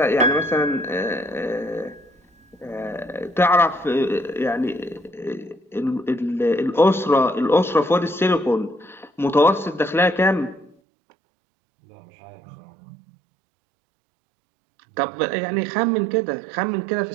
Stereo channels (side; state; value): left; drops out; at 10.8 s